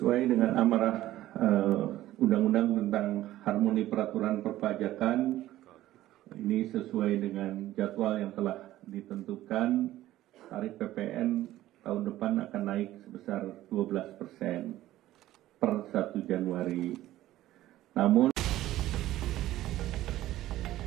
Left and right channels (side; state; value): left; quieter; 14.8 dB